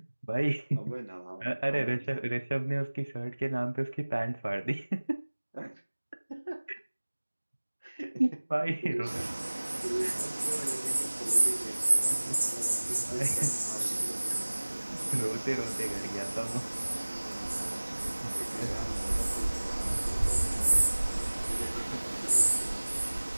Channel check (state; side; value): inverted; both; correlation -1.00